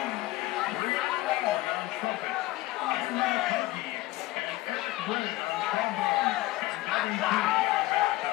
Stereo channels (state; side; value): quieter; right; 18.2 dB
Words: Brianna Ward on trumpet, Anna McCarthy, and Eric Brennan on trombone, and Devin Key on